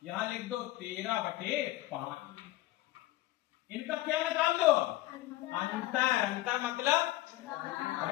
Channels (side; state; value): right; quieter; 16.6 dB